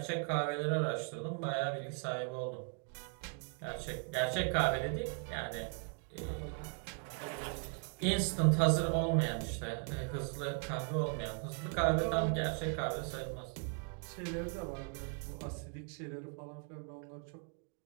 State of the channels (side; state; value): left; quieter; 38.4 dB